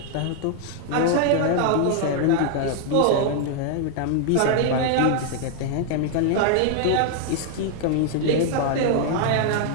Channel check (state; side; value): different; both; correlation 0.00